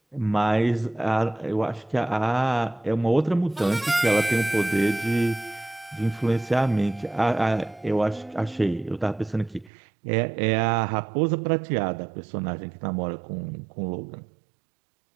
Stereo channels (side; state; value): left; drops out; at 9.7 s